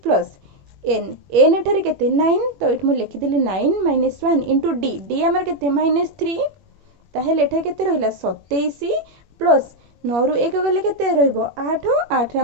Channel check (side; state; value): left; late; 21 ms